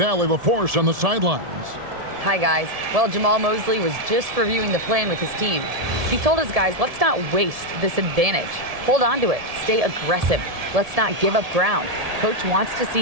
LaForce on the sidelines. Hi, guys. Well, Jamal Mosley was just reviewing the plan with his team. He told his guys, let's not waste this advantage. Hold on to it. Stay aggressive. Let's not give up ground. Coach wants to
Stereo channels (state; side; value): late; left; 1.7 ms